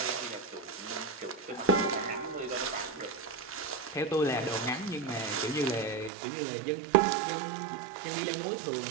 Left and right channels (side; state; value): left; drops out; at 6.1 s